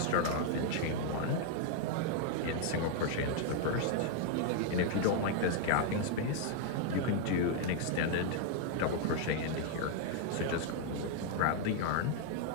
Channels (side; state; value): both; different; correlation 0.00